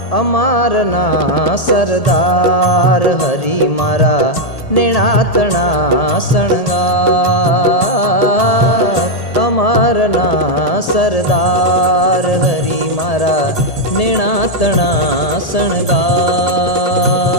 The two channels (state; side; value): late; right; 1.8 ms